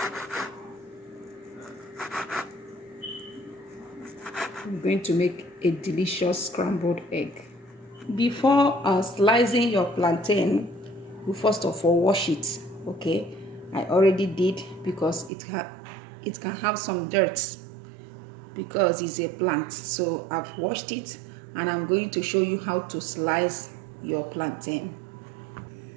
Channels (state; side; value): drops out; left; at 15.3 s